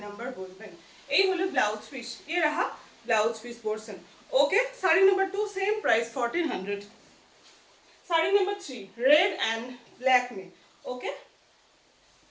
number বলবেন। এই হলো ব্লাউজ পিস, ये रहा blouse piece portion. Okay, sari number 2 same price 1400। Sari number 3 red and black में। ओके,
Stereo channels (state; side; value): identical; both; correlation 1.00